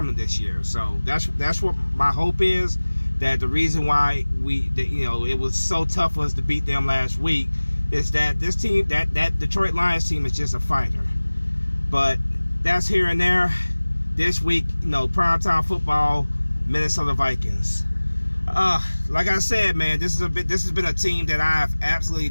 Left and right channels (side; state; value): both; inverted; correlation -1.00